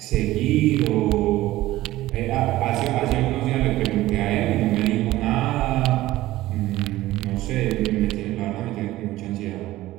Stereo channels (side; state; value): left; quieter; 16.4 dB